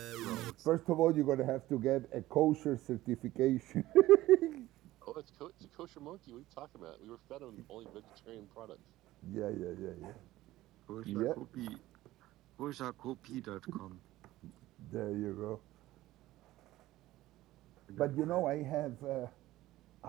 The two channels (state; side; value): quieter; left; 16.3 dB